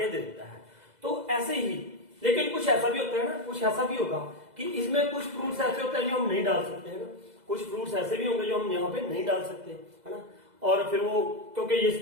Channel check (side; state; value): left; late; 2.0 ms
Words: दे देता है। तो ऐसे ही, लेकिन कुछ ऐसा भी होता है ना, कुछ ऐसा भी होगा कि इसमें कुछ फ्रूट्स ऐसे होते हैं जो हम नहीं डाल सकते हैं ना, कुछ फ्रूट्स ऐसे भी होंगे जो हम यहाँ पे नहीं डाल सकते, है ना, और फिर वो क्योंकि ये